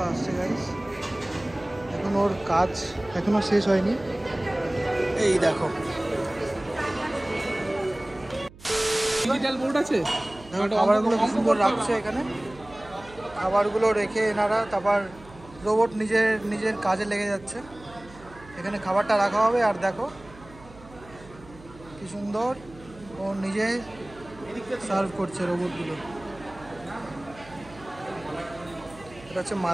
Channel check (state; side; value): noise; right; hum, 21 dB below the sound